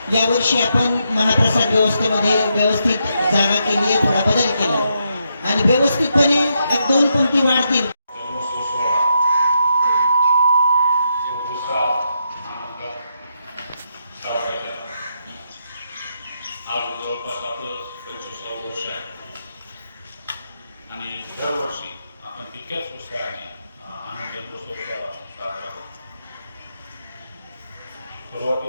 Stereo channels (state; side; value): inverted; both; correlation -0.81